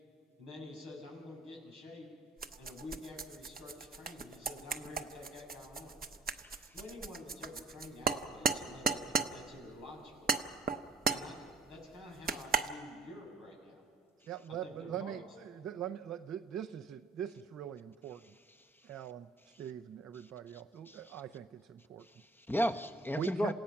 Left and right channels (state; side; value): quieter; left; 3.4 dB